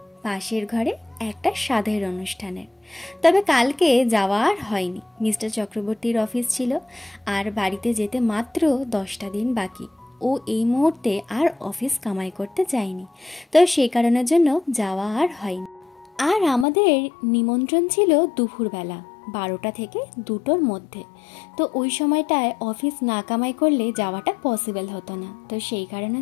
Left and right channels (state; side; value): drops out; right; at 16.7 s